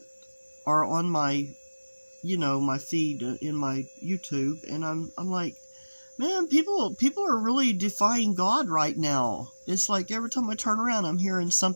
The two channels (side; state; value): both; inverted; correlation -1.00